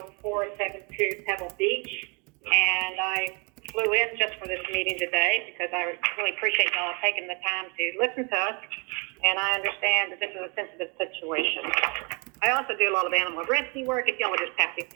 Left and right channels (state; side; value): quieter; left; 33.0 dB